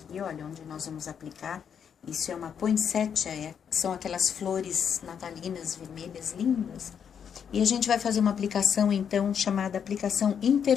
olha, onde nós vamos aplicar. Isso é uma poinsettia, são aquelas flores natalinas vermelhas lindas. E a gente vai fazer uma aplicação, então, chamada aplicação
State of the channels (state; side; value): quieter; right; 7.7 dB